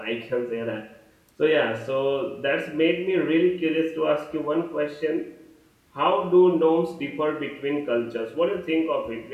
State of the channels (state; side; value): identical; both; correlation 1.00